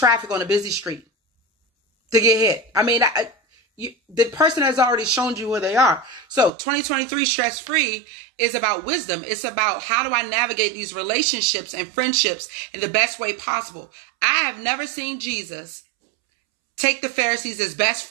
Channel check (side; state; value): left; drops out; at 6.5 s